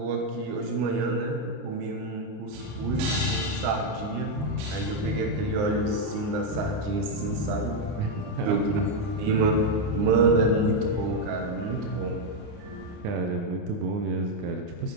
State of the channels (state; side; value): late; left; 29 ms